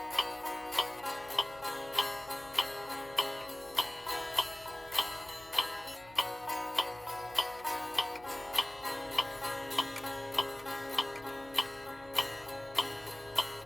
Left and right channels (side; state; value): left; noise; hum, 22 dB below the sound